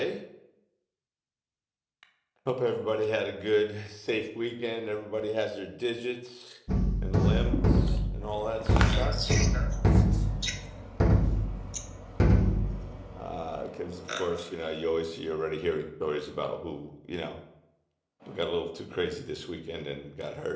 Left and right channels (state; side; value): identical; both; correlation 1.00